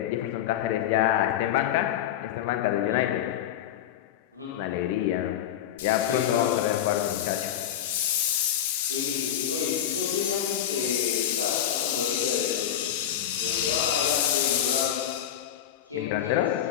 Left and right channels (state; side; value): quieter; right; 10.7 dB